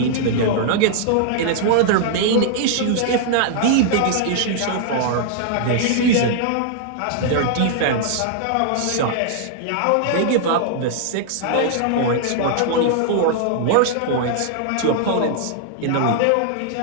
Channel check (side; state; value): both; different; correlation -0.01